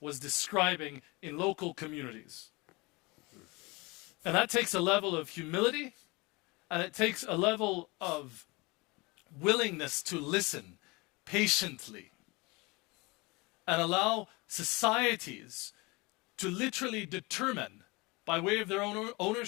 describing in local communities. And that takes a level of humility, and it takes a level of willingness to listen patiently and allow societies to literally determine, by way of their own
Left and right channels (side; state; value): right; quieter; 25.3 dB